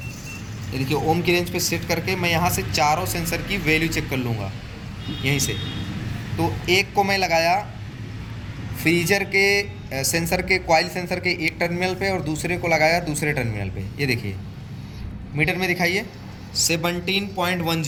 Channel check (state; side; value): identical; both; correlation 1.00